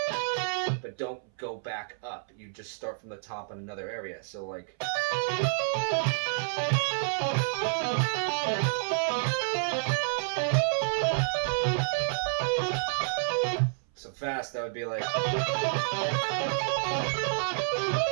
but don't go back up. You just start from the top on another area. So like... So fast, that would be like...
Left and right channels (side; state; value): left; silent; 58 dB below the other